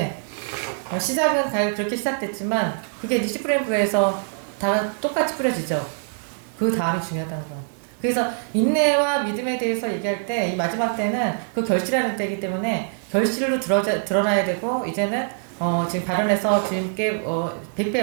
시작은 그렇게 시작됐지만 그게 이제 씨 뿌리는 부에서 다 똑같이 뿌려지죠. 그 다음이 중요하다는 거야. 그래서 인내와 믿음에 대해서 얘기할 때 이 마지막 때는 그 결실하는 때이기 때문에 결실로 드러나야 되고, 이제는 지금 발언해서 주님께 100배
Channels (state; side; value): silent; left; digital silence